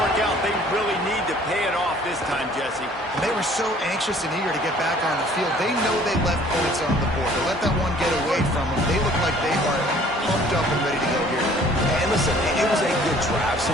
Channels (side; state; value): both; normal; correlation 0.55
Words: out. They really need to pay it off this time, Jesse. They were so anxious and eager to get back on the field. They know they left points on the board. To let that one get away from them, they look like they are pumped up and ready to go here. And listen, it was a good drive, so